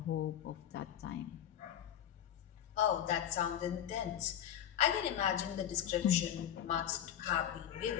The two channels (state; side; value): quieter; right; 10.3 dB